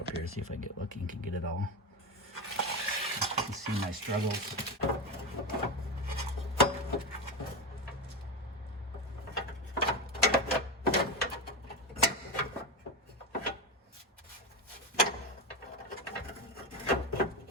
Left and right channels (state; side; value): normal; both; correlation 0.15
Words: up here, see if I get lucky and can get it all. You can see my struggles.